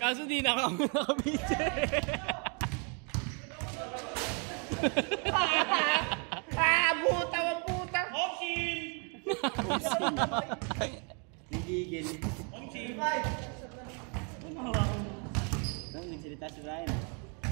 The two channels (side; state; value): left; quieter; 37.2 dB